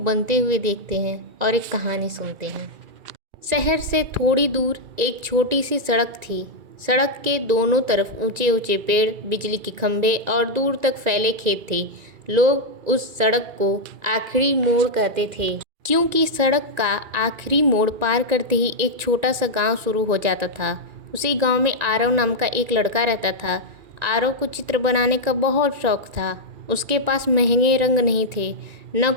हुए देखते हैं और एक कहानी सुनते हैं। शहर से थोड़ी दूर एक छोटी सी सड़क थी। सड़क के दोनों तरफ ऊंचे ऊंचे पेड़, बिजली के खंभे और दूर तक फैले खेत थे। लोग उस सड़क को आखिरी मोड़ कहते थे, क्योंकि सड़क का आखिरी मोड़ पार करते ही एक छोटा सा गांव शुरू हो जाता था। उसी गांव में आरव नाम का एक लड़का रहता था। आरव को चित्र बनाने का बहुत शौक था। उसके पास महंगे रंग नहीं थे, न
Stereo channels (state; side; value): late; left; 2.4 ms